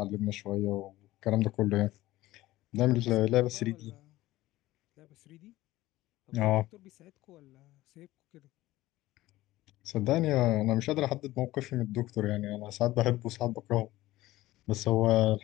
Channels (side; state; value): right; quieter; 17.0 dB